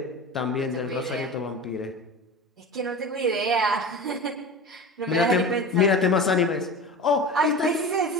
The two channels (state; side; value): normal; both; correlation 0.31